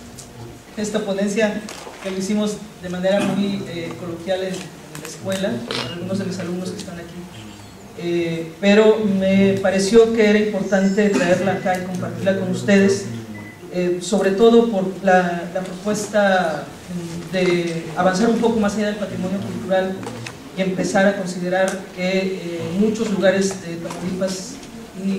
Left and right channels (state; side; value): identical; both; correlation 1.00